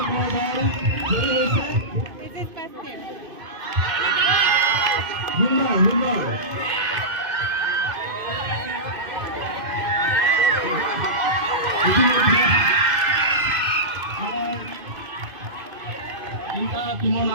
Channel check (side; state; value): left; late; 2.5 ms